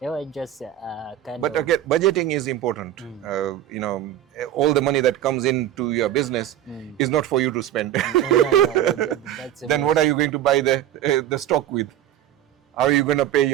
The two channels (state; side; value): quieter; left; 11.9 dB